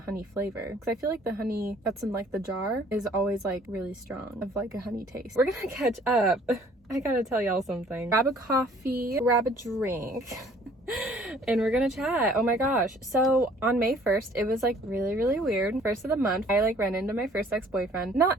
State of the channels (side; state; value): both; normal; correlation 0.56